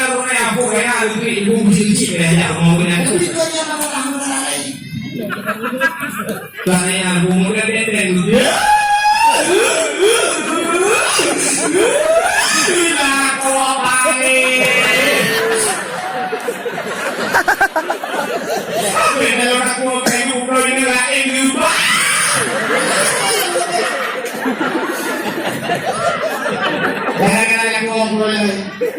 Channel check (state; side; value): identical; both; correlation 1.00